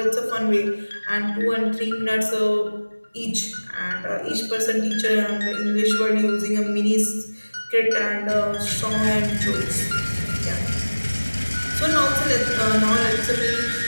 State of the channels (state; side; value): inverted; both; correlation -1.00